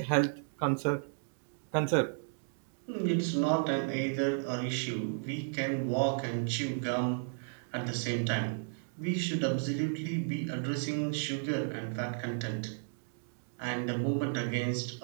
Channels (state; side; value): silent; left; digital silence